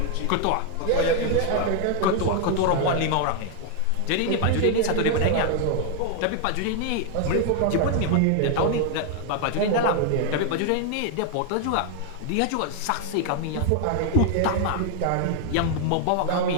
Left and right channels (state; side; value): different; both; correlation 0.00